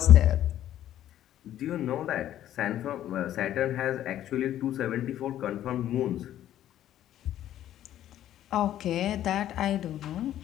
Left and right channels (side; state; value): right; quieter; 12.1 dB